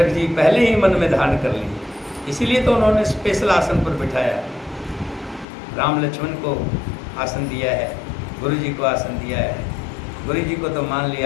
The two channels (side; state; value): right; drops out; at 5.5 s